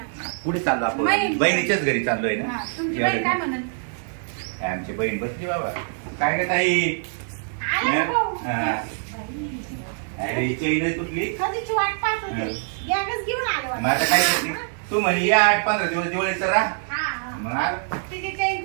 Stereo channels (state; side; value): silent; left; digital silence